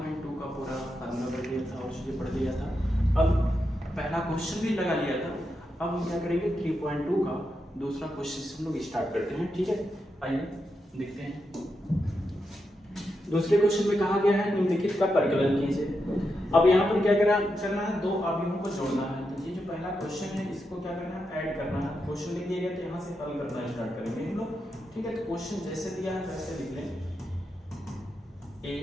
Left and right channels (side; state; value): both; normal; correlation 0.85